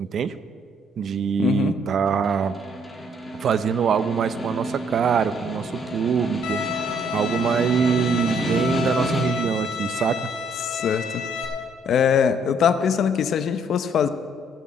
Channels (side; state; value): both; normal; correlation 0.66